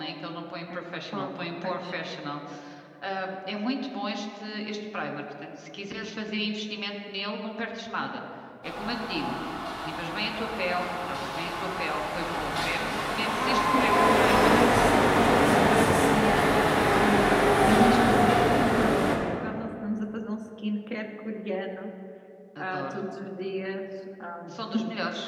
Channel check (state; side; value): identical; both; correlation 1.00